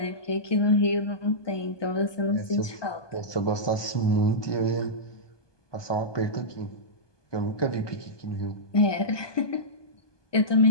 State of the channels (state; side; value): late; right; 1.2 ms